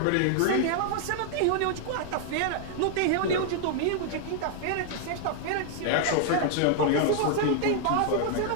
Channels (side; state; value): both; different; correlation 0.00